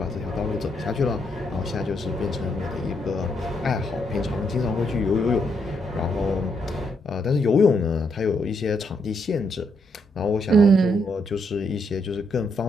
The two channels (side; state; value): both; normal; correlation 0.77